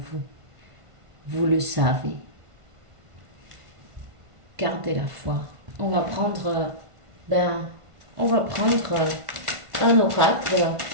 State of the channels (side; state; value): left; late; 1.5 ms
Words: Vous le savez. Gardez la foi. On va prendre, un oracle,